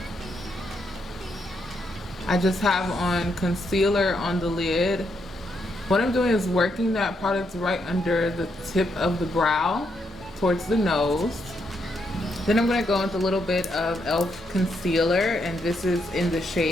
I just have on concealer on the lid. What I'm doing is working that product right under the tip of the brow towards the nose. Then I'm going to go with a little bit of e.l.f. concealer, and this is in the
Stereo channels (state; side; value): normal; both; correlation 0.79